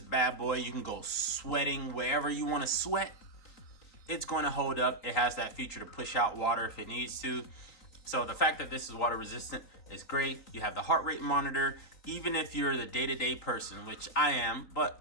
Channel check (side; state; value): right; late; 3.9 ms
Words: bad boy. You can go sweating wherever you want to sweat. It's going to hold up. It has that feature to push out water if it needs to. So the fact that this is water resistant is great. You have the heart rate monitor. Even if you're the day-to-day person, which I am, but